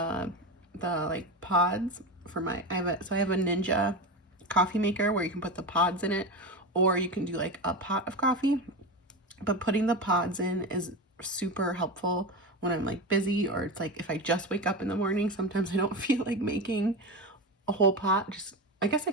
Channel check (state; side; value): normal; both; correlation 0.21